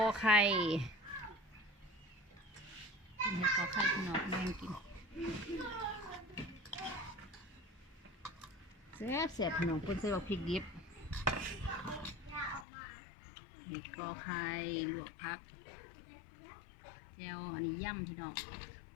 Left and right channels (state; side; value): drops out; right; at 12.7 s